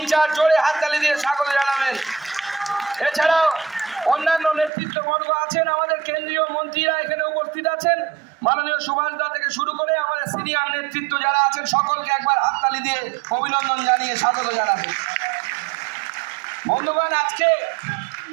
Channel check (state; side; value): drops out; left; at 4.7 s